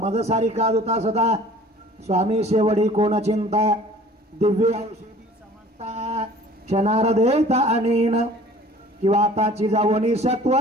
सारी काज होता सदा स्वामी शेवडी कोण चिंता दिव्य औषधी समजता क्षणार देता अनेन किंवा आताची जावणी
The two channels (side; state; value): both; normal; correlation 0.49